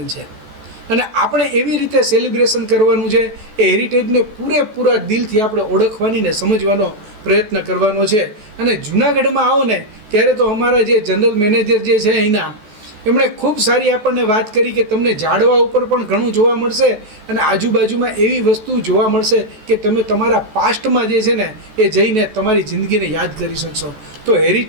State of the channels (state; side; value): late; left; 14 ms